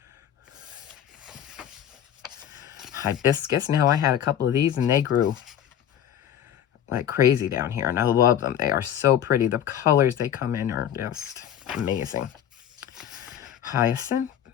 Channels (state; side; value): quieter; right; 10.1 dB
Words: Hibiscus. Now I had a couple of these and they grew like crazy down here, and I love them. They are so pretty. The colors they come in are just amazing. Hyacinth.